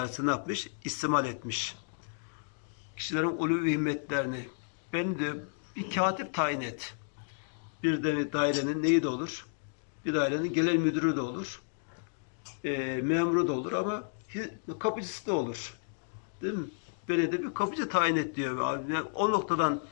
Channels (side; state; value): right; silent; digital silence